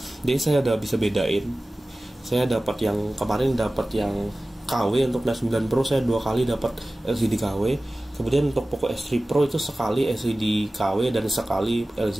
Jadi saya udah bisa bedain. Saya dapat yang kemarin, dapat yang KW. Untuk Note 9 Pro saya 2 kali dapat LCD KW. Kemudian untuk Poco X3 Pro itu sekali LCD KW dan sekali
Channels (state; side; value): normal; both; correlation 0.97